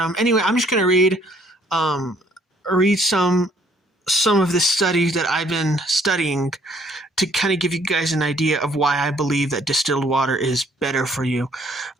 anyway, I'm just going to read some of the studies that I've been studying to kind of give you guys an idea of why I believe that distilled water is better for you.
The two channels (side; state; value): both; normal; correlation 0.62